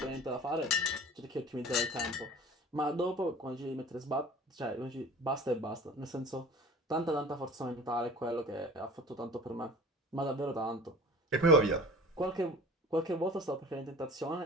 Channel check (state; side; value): normal; both; correlation 0.41